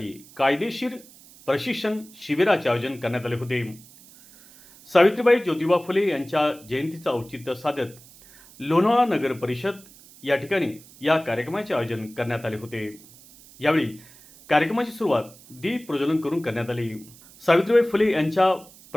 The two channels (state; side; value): noise; right; hiss, 23 dB below the sound